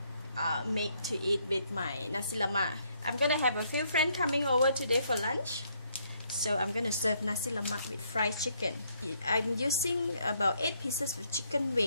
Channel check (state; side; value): inverted; both; correlation -0.71